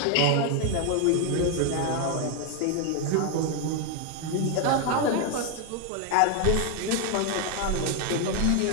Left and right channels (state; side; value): different; both; correlation 0.01